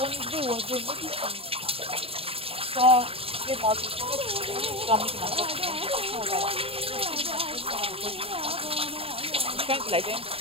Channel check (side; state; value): left; late; 0.27 ms